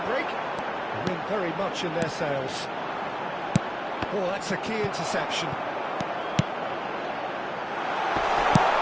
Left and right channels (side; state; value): both; identical; correlation 1.00